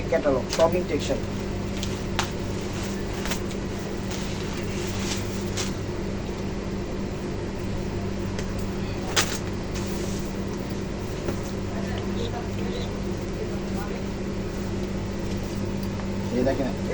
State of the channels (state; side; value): identical; both; correlation 1.00